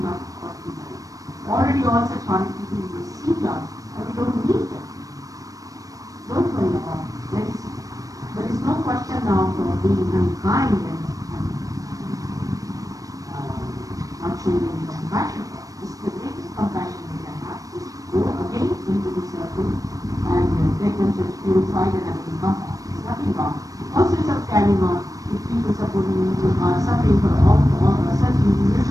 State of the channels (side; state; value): left; late; 0.17 ms